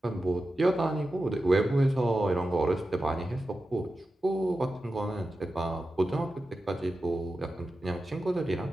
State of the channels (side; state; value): both; normal; correlation 0.92